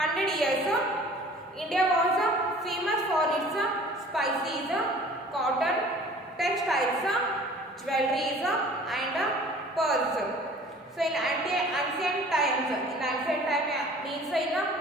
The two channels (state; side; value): normal; both; correlation 0.48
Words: years, India was famous for its spices, cotton, textiles, jewelries and pearls. So in ancient times, means in